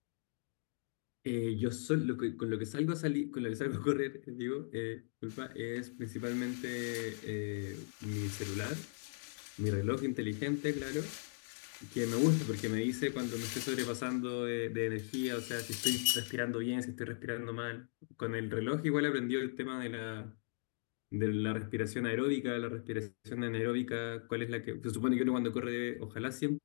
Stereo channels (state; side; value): silent; right; digital silence